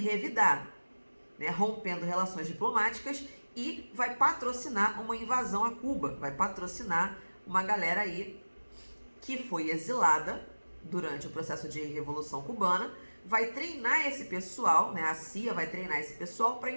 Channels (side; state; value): both; inverted; correlation -1.00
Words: né, rompendo relações diplomáticas e vai patrocinar uma invasão a Cuba, vai patrocinar uma galera aí que foi exilada durante o processo de Revolução Cubana, vai treinar esse pessoal, né, a CIA vai treinar esse pessoal para